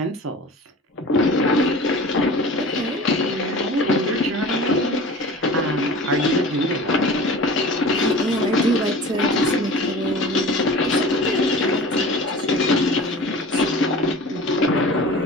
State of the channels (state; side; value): normal; both; correlation 0.39